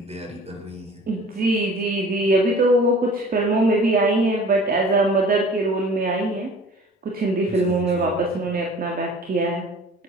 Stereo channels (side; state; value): both; normal; correlation 0.46